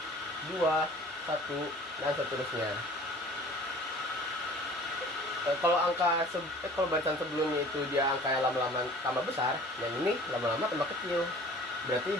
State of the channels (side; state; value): both; normal; correlation 0.47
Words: 2, 1, dan seterusnya. Kalau kalau barisan sebelumnya itu dia angka yang lama-lama tambah besar, yang ini lama-lama tambah kecil. Berarti